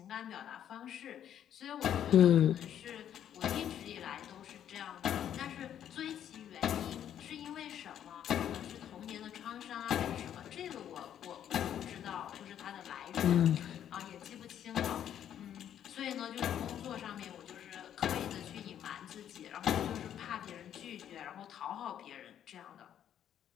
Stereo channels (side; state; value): right; quieter; 10.1 dB